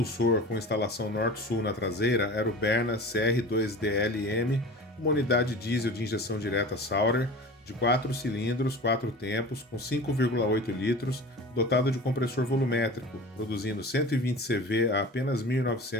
com instalação norte-sul na traseira era o Berna CR2DLM, uma unidade diesel de injeção direta Sauder, de 4 cilindros, 4 tempos, com 5,8 litros, dotado de compressor volumétrico, produzindo 120 CV a apenas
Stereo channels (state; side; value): normal; both; correlation 0.37